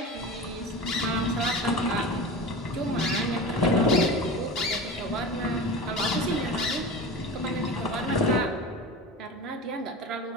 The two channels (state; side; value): normal; both; correlation 0.30